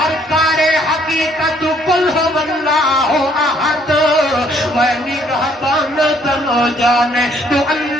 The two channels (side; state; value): both; normal; correlation 0.64